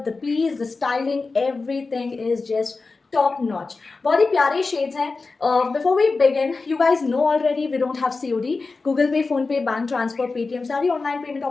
the piece, the styling, everything is just top notch. बहुत ही प्यारे शेड्स हैं. Before we begin, you guys know already we don't have COD. Google Pay, Phone Pay, bank transfer, Paytm सारी online payment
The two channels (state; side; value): quieter; right; 4.0 dB